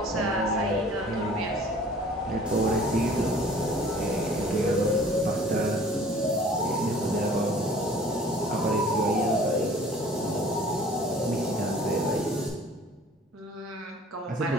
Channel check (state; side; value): normal; both; correlation 0.50